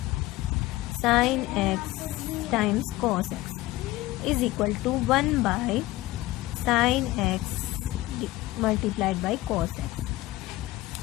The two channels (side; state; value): right; quieter; 17.8 dB